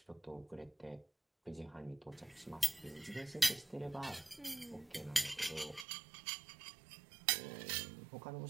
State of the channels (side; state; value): left; drops out; at 5.9 s